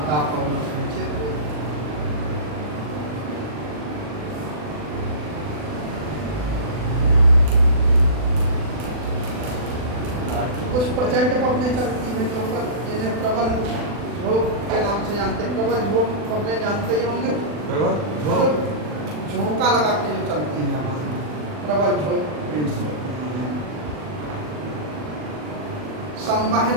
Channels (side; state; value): left; late; 40 ms